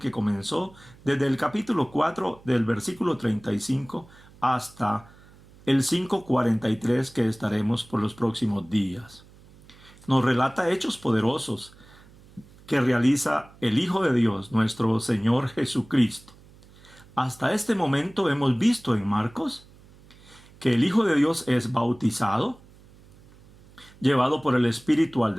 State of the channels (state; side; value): noise; right; hum, 25 dB below the sound